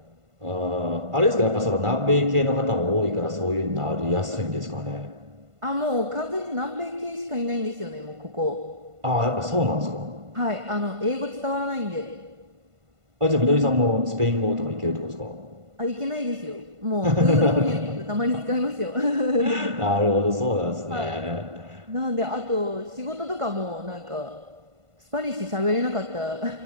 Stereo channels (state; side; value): late; left; 1.5 ms